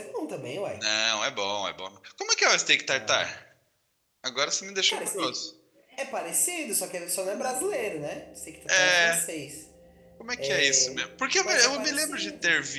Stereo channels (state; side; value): identical; both; correlation 1.00